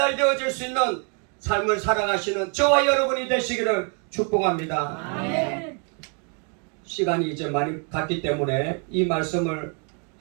수 있는 삶을 살아가시는 저와 여러분이 되시기를 축복합니다. 아멘. 시간이 이제 많이 갔기 때문에 이 말씀을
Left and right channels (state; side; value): quieter; left; 38.2 dB